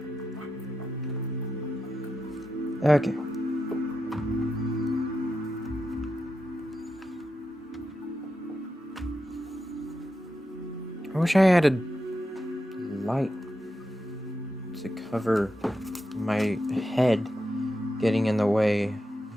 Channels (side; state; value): both; normal; correlation 0.88